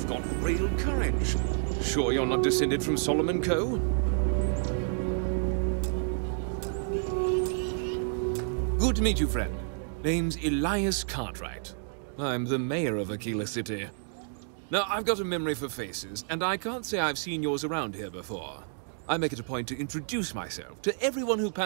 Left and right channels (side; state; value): left; silent; digital silence